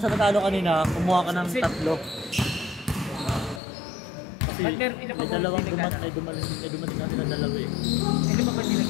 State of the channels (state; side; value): drops out; right; at 3.6 s